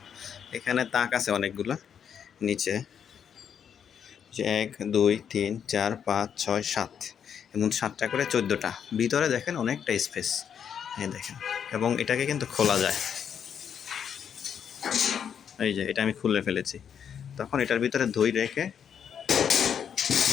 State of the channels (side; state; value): right; quieter; 8.0 dB